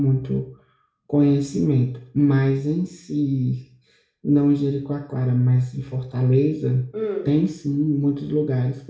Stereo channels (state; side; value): identical; both; correlation 1.00